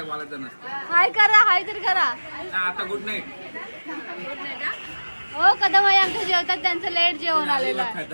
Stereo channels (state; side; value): inverted; both; correlation -1.00